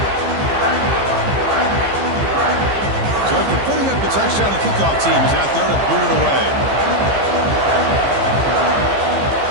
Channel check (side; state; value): left; late; 15 ms